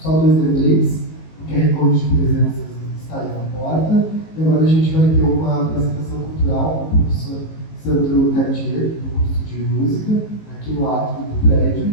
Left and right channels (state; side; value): late; right; 19 ms